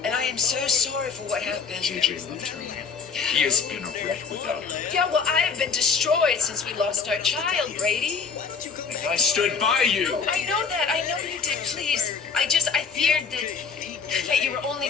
And I am so sorry for what happened. JJ loved her. He has been a wreck without her. Yeah, well, I have been destroyed since we lost our child, Brady. And I stood by you. I know that. I know you did. Please. I feared that you were only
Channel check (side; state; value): right; quieter; 5.6 dB